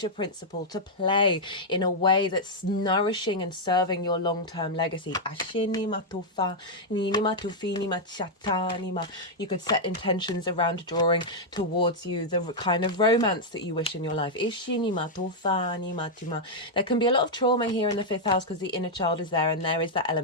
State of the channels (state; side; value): normal; both; correlation -0.04